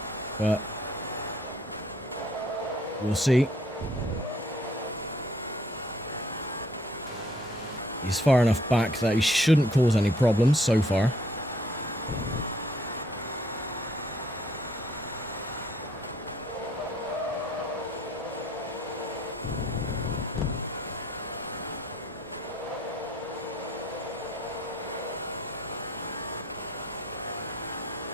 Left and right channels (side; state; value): both; normal; correlation 0.63